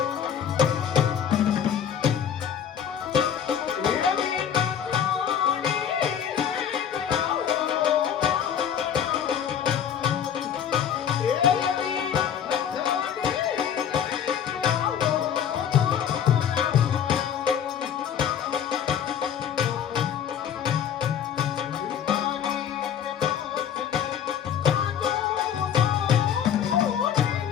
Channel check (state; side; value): quieter; right; 8.7 dB